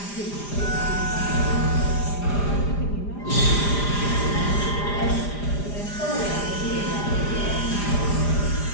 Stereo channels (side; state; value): right; late; 4.9 ms